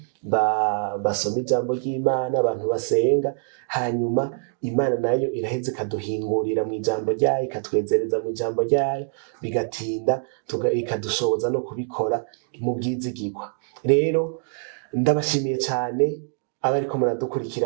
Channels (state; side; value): silent; left; digital silence